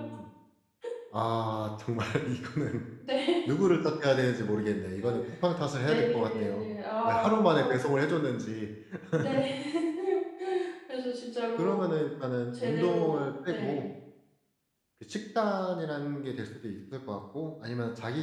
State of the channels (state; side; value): identical; both; correlation 1.00